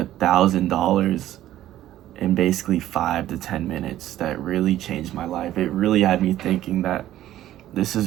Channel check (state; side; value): quieter; left; 13.4 dB